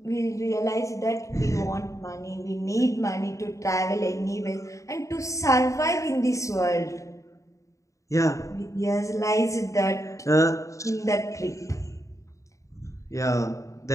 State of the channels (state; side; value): late; right; 0.15 ms